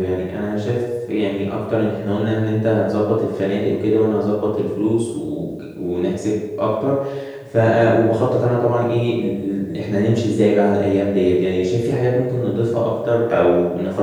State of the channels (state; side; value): identical; both; correlation 1.00